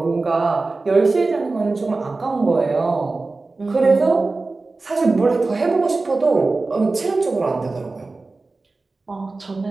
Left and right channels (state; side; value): quieter; left; 3.5 dB